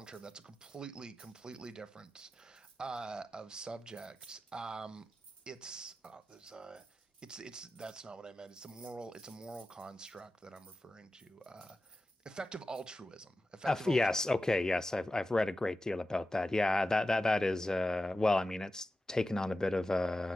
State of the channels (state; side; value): normal; both; correlation 0.93